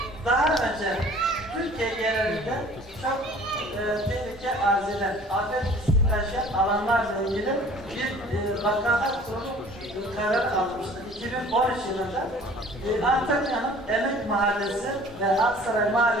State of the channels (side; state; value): both; normal; correlation 0.49